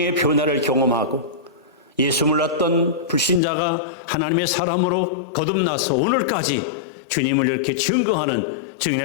변화를 경험하고 예수 몰랐던 불신자가 하나님의 사람으로 거듭나서 오늘까지 주님을 이렇게 증거하는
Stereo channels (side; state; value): right; drops out; at 3.4 s